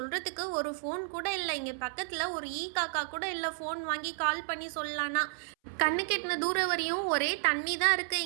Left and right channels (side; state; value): left; silent; 56 dB below the other